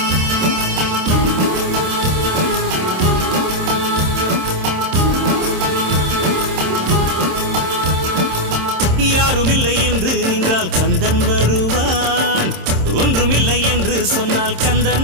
யாருமில்லை என்று நின்றால் கந்தன் வருவான், ஒன்றுமில்லை என்று சொன்னால்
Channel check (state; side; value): late; left; 26 ms